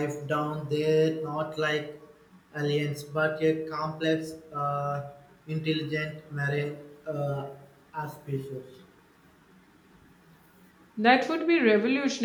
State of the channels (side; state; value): both; identical; correlation 1.00